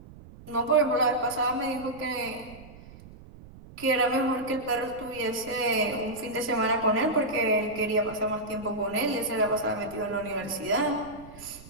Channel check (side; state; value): right; noise; rumble, 19 dB below the sound